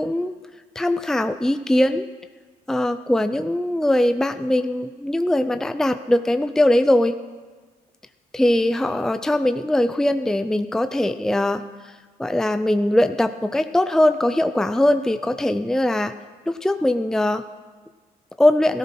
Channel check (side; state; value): both; normal; correlation 0.95